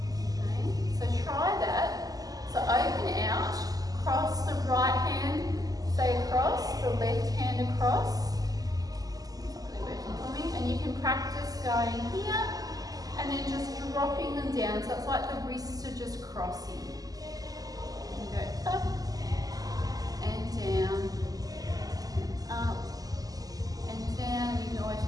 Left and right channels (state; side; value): late; left; 0.17 ms